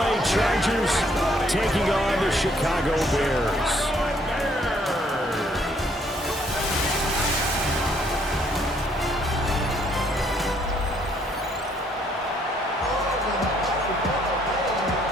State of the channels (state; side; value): normal; both; correlation 0.67